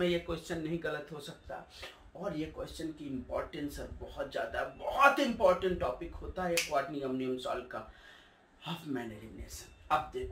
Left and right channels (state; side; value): identical; both; correlation 1.00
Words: ये क्वेश्चन नहीं गलत हो सकता। और ये क्वेश्चन की इंपॉर्टेंस बहुत ज्यादा, बहुत इंपॉर्टेंट टॉपिक होता है क्वाटरनरी अमोनियम सॉल्ट का हाफ मैन एलिमिनेशन। अब